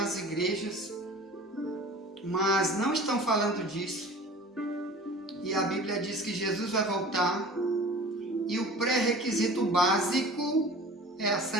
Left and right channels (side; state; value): both; normal; correlation 0.42